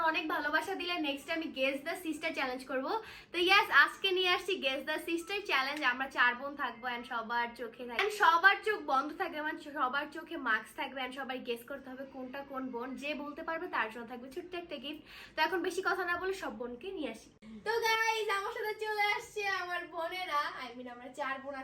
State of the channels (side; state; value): both; identical; correlation 1.00